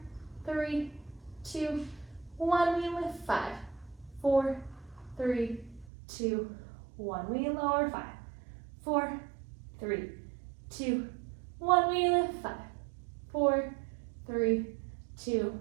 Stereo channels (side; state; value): left; drops out; at 5.9 s